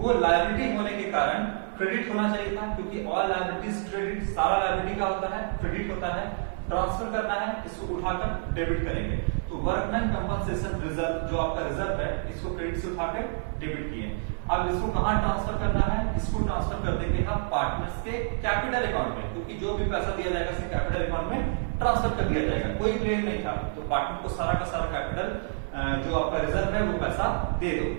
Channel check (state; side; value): silent; left; digital silence